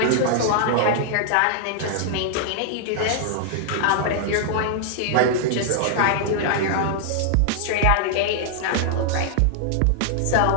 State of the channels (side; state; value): both; different; correlation -0.01